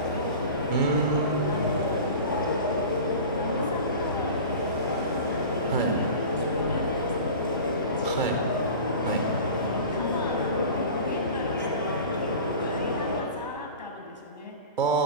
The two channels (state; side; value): inverted; both; correlation -0.36